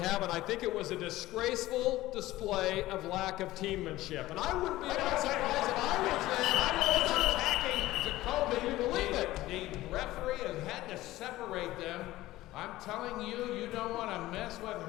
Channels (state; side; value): quieter; right; 16.7 dB